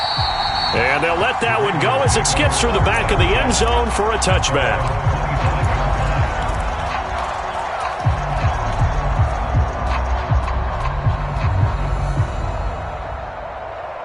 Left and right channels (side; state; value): both; identical; correlation 1.00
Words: And they'll let that one go as it skips through the back of the end zone for a touchback.